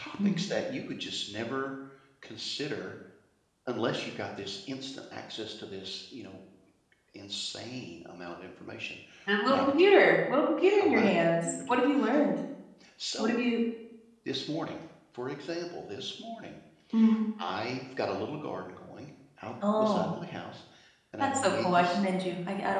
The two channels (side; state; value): both; identical; correlation 1.00